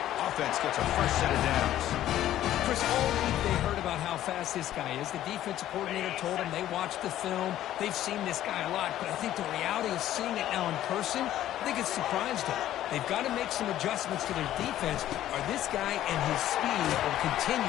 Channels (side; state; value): right; quieter; 12.8 dB